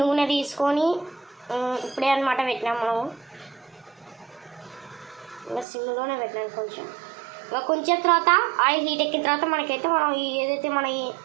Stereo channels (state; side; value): drops out; left; at 5.7 s